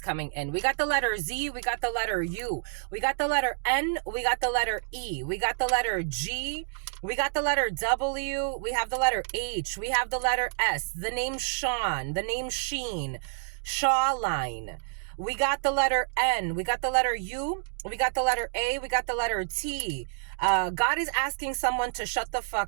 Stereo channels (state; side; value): silent; left; digital silence